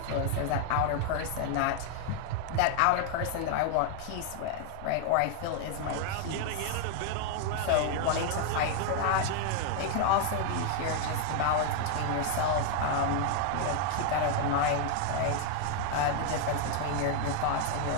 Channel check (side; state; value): both; different; correlation 0.00